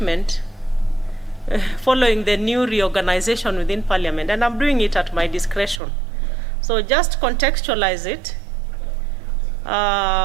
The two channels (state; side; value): drops out; left; at 5.8 s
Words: following the new reorganization within Parliament, and I'm doing it at my discretion. So just contextualize it.